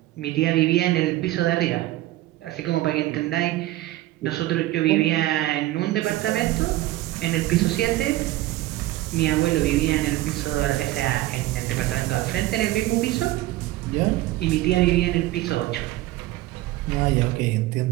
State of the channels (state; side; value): quieter; left; 16.3 dB